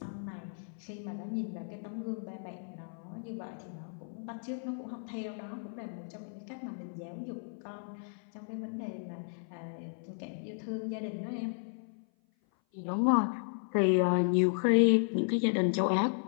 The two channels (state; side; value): silent; right; 55 dB below the other